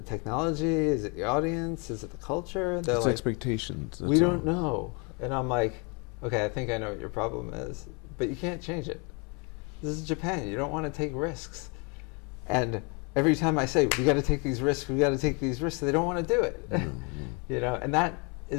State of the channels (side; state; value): right; quieter; 32.5 dB